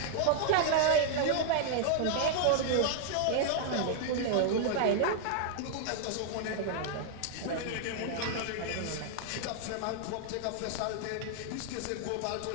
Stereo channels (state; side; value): different; both; correlation -0.01